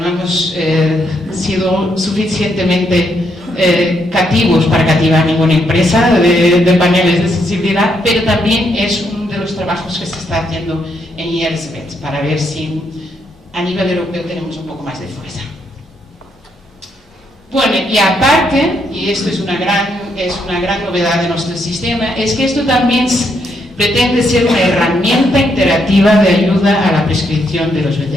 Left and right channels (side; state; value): both; normal; correlation 0.76